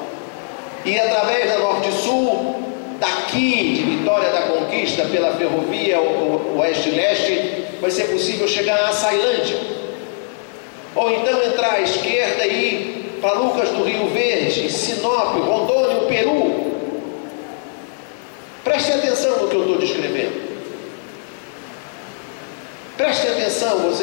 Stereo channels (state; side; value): silent; right; digital silence